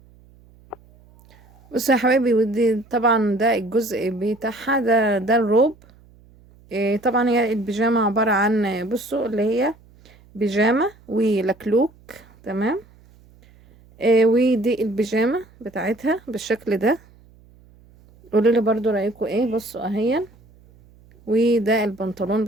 بصوا يا حبايبي، ودي طبعا ده الجزء بتاعها، ده الروب. طبعا هي البيجامة عبارة عن، بصوا، اللي هي بيجامة ولكلوك. تمام. ودي البيجامة بتاعتها بالشكل ده. قولوا لي برضو رأيكم ايه. بصوا اهيا. وده البنطلون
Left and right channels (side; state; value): right; noise; hum, 27 dB below the sound